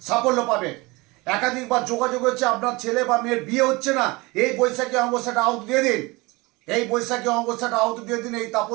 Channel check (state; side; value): quieter; left; 23.8 dB